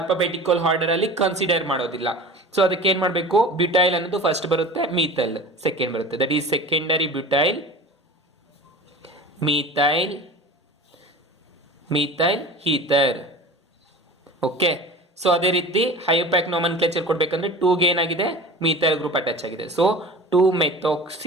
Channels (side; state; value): both; normal; correlation 0.36